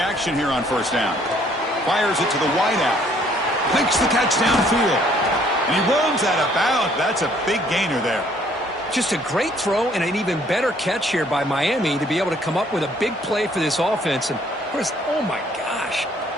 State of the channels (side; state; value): both; normal; correlation 0.62